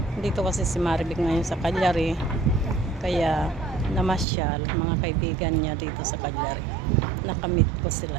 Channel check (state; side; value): drops out; left; at 4.2 s